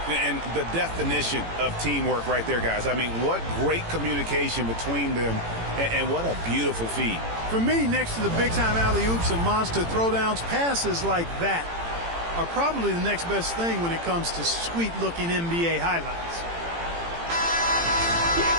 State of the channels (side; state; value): left; late; 18 ms